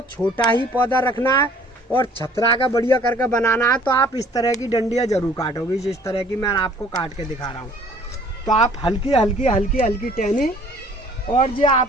छोटा ही पौधा रखना है और छतरा का बढ़िया करके बनाना है। तो आप इस तरह की डंडियाँ जरूर काटोगे, जिस तरह की मैं आपको काट के दिखा रहा हूँ। तो आप हल्की हल्की हल्की हल्की टहनी, और जो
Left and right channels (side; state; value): both; normal; correlation 0.55